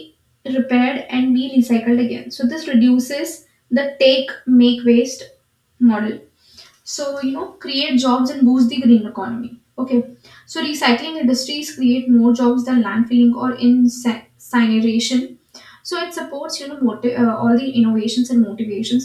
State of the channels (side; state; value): both; identical; correlation 1.00